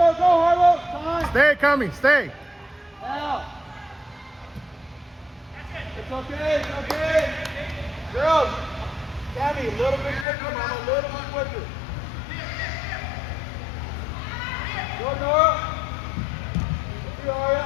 go, Harlow. Time. Stay, Kami, stay. Now. It's okay. Girls, Tammy, a little bit quicker, Mama, a little bit quicker. Go, Nora. Let's go, Arya.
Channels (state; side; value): drops out; right; at 10.2 s